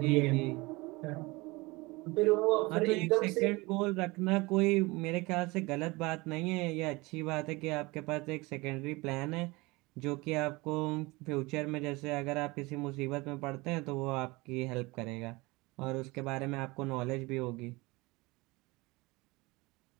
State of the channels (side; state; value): left; quieter; 23.5 dB